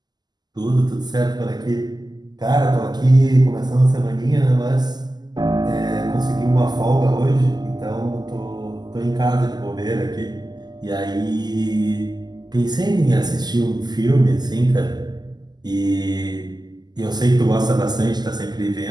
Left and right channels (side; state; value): left; late; 0.20 ms